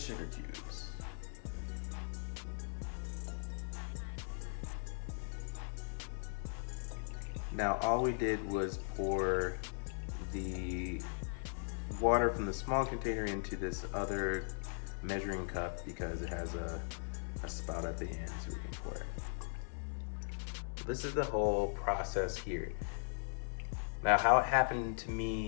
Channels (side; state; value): right; silent; 52 dB below the other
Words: cubes. Now all we did was pour the water from the small container into this other measuring cup because it has a spout at the end so we can pour it. This is the whole process here. Now how it happened to